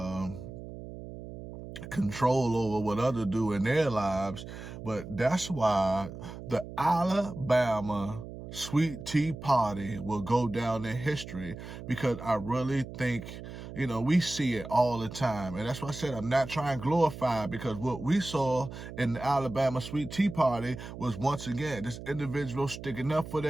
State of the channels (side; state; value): right; noise; hum, 11 dB below the sound